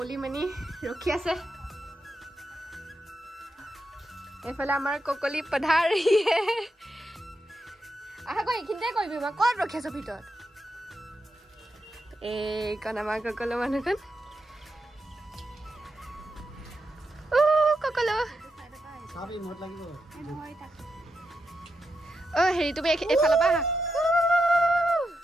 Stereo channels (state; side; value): normal; both; correlation 0.86